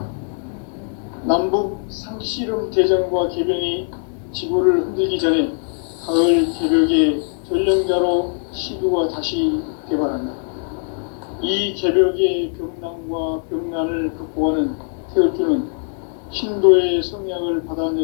남북 상씨름 대전과 계병이 지구를 흔들기 전에 가을 개벽의 전령자로 시교가 다시 개발한다. 이 개벽의 병난과 병난을 극복하는 태울주는 신도의 성약을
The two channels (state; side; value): silent; right; 56 dB below the other